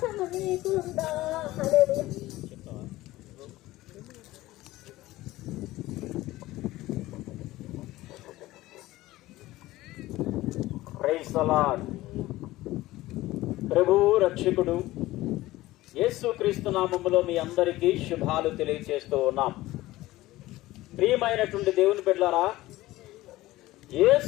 నీకుందా? హల్లెలూయా. Praise the Lord. ప్రభు రక్షకుడు యేసుక్రీస్తు నామములో మీ అందరికీ శుభాలు తెలియజేస్తూ ఉన్నాం. ప్రియమైనటువంటి దేవుని బిడ్డలారా,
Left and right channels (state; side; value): quieter; right; 17.3 dB